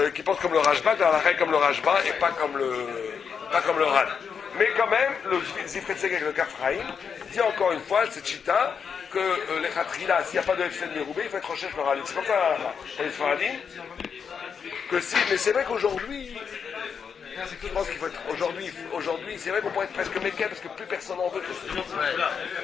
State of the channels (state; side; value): quieter; right; 6.6 dB